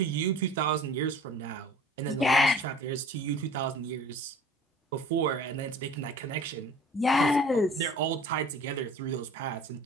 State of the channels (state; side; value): normal; both; correlation 0.46